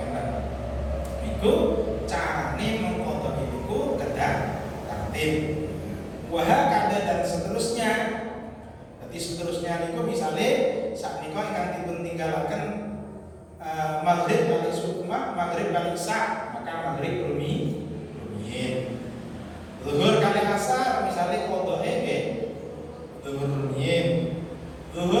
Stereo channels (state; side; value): identical; both; correlation 1.00